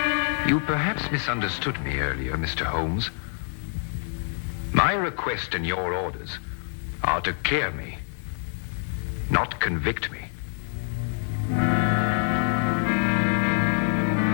You perhaps misunderstood me earlier, Mr. Holmes. My request and your orders are to clear me, not convict me.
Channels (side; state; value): right; silent; digital silence